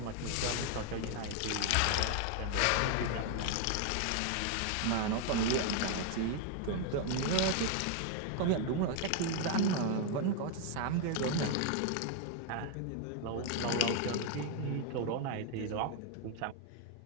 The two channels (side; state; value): both; different; correlation 0.00